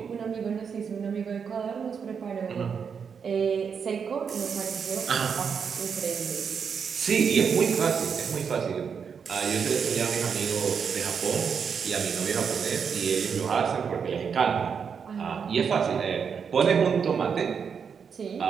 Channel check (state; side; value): quieter; left; 6.5 dB